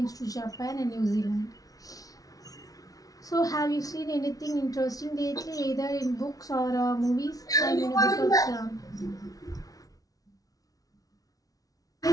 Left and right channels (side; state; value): right; late; 0.18 ms